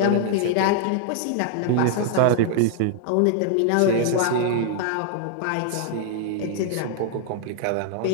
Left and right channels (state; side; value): different; both; correlation 0.00